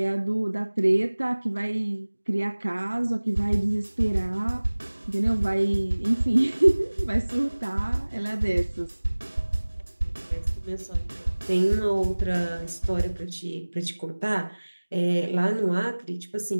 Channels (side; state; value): both; inverted; correlation -1.00